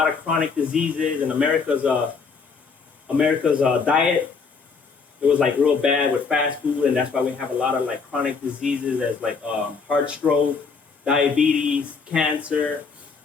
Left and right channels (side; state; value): right; quieter; 5.1 dB